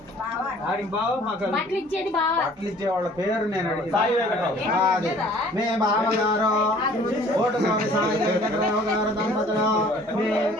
బట్టలు ఇచ్చే వాళ్ళ పేరు నేను అడిగి. మీ బావగారు ఓటు కోరి సాయి వెంకటరావు గారు దంపతులు మీ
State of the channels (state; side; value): normal; both; correlation 0.53